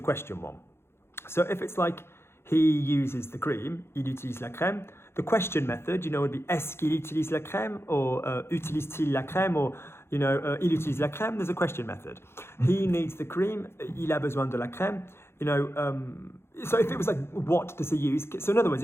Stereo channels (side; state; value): right; late; 0.12 ms